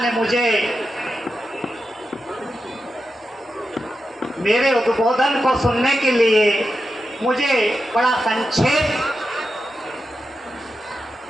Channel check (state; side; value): normal; both; correlation 0.89